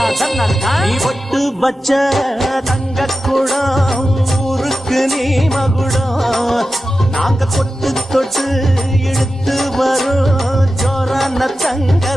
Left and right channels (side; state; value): both; normal; correlation 0.92